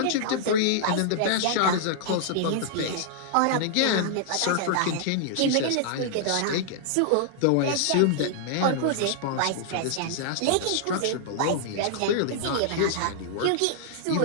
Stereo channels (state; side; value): different; both; correlation -0.01